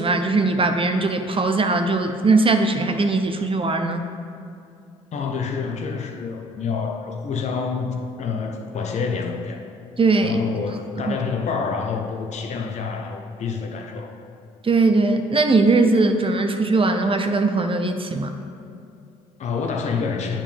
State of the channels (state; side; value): normal; both; correlation 0.61